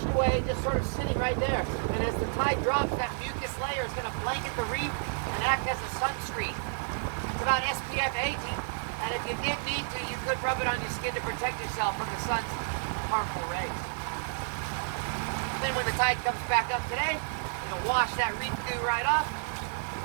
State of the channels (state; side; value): silent; left; 57 dB below the other